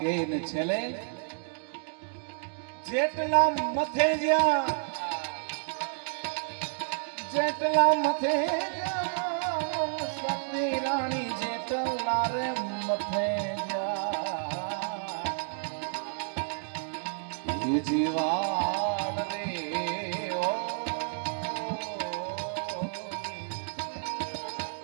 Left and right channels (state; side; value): silent; left; 58 dB below the other